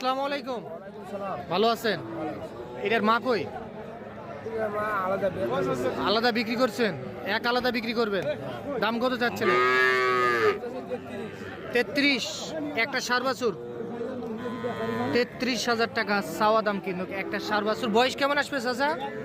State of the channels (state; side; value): identical; both; correlation 1.00